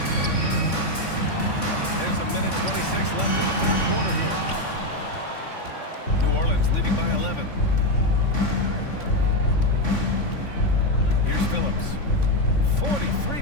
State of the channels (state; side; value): late; right; 3.5 ms